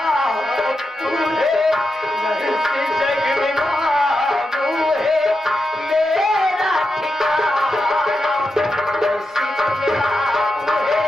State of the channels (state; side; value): normal; both; correlation 0.88